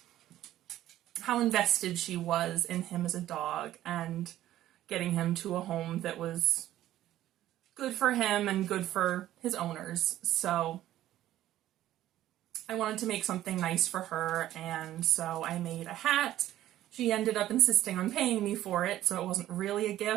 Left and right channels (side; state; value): left; quieter; 13.5 dB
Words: how invested she was in him as a dog and getting him to a home that was good for him and good for his owners. So I wanted to make something nice for her, and so I made a hat. She ended up insisting on paying me for it, so it wasn't really a